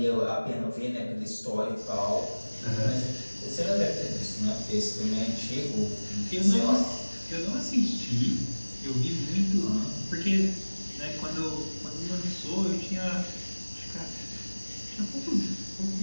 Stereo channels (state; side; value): inverted; both; correlation -1.00